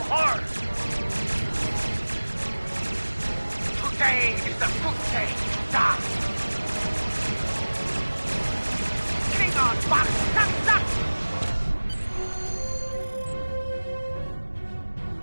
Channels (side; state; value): both; inverted; correlation -1.00